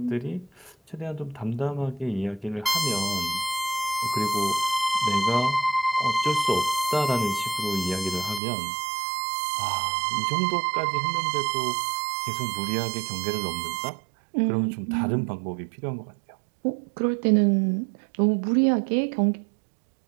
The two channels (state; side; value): drops out; left; at 8.4 s